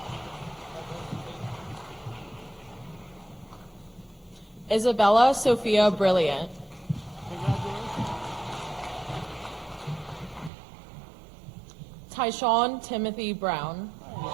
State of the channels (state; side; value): drops out; left; at 10.5 s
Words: that. Isabella Sophia Brilliant. Congratulations. Tyshawn Timothy Brown.